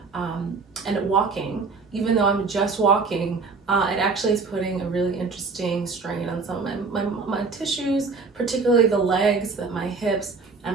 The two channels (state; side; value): quieter; left; 4.4 dB